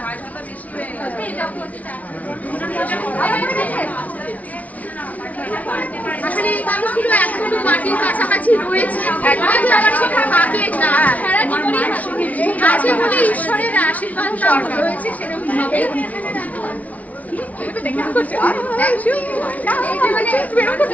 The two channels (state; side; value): late; right; 0.071 ms